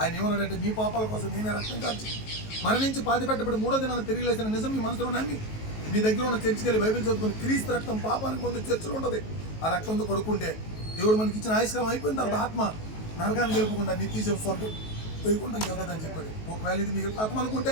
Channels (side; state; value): right; late; 19 ms